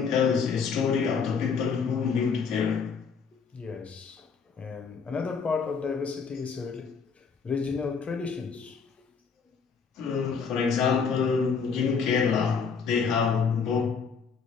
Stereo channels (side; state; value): right; quieter; 5.8 dB